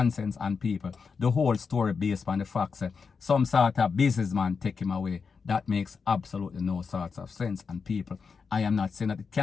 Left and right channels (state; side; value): quieter; right; 5.4 dB